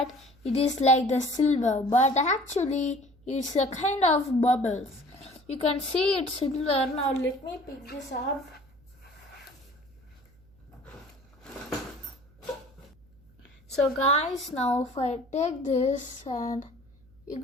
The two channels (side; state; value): right; noise; hum, 29 dB below the sound